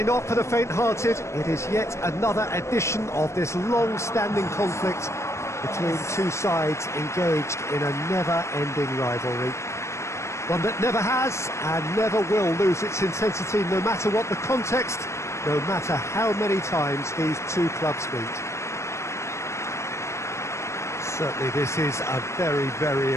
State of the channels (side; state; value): right; late; 0.13 ms